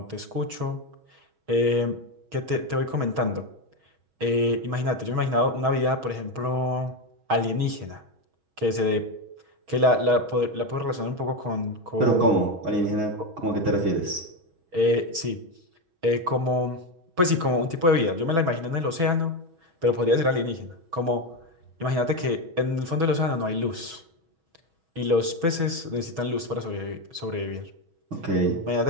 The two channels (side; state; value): left; late; 5.7 ms